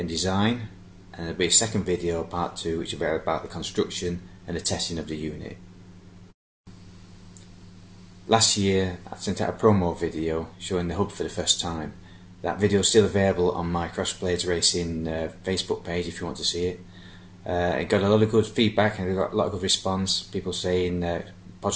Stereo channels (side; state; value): both; identical; correlation 1.00